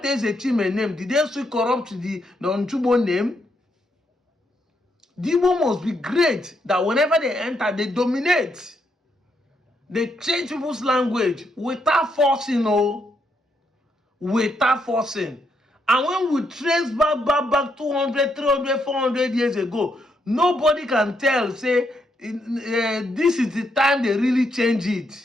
Ezechime name, did they still corrupt the Nchubo name? The Igbo must be great that whenever they enter, they dominate. They change people's language without forcing, without forcing. And when we trace back 200, 300, 400 years ago, nobody can tell, say, this is the time they really change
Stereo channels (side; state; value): both; normal; correlation 0.78